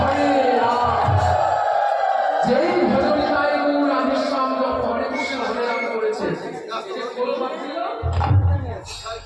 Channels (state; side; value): identical; both; correlation 1.00